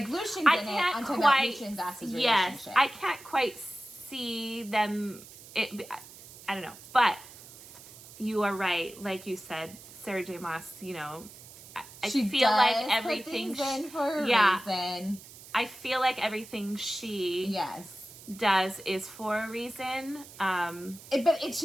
Lucian I didn't. can't I'm talking quite. about Lucien and Vassa's relationship. Yes. I can't quite see them. I don't know. But you are right. Like you said, Sarah J. Maas, you know, I feel like everything. Put things in for a reason. I feel like everything she does is for a reason. But it's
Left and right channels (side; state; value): right; noise; hiss, 18 dB below the sound